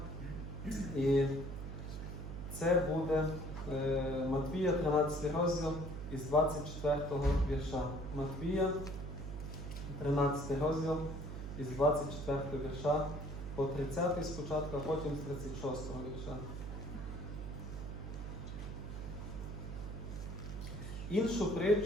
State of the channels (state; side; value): noise; right; hum, 7 dB below the sound